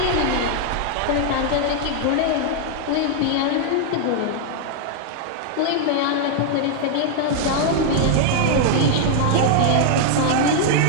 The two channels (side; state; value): both; different; correlation 0.00